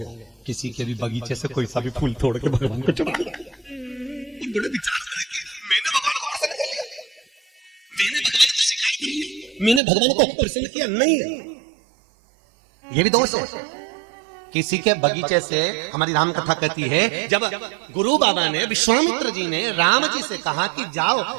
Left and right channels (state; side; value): drops out; left; at 9.8 s